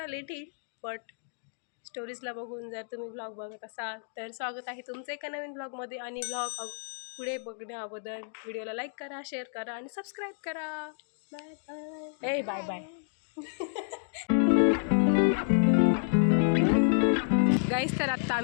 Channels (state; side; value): silent; right; digital silence